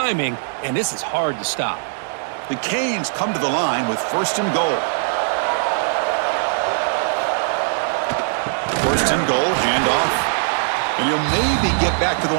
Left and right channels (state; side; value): silent; left; digital silence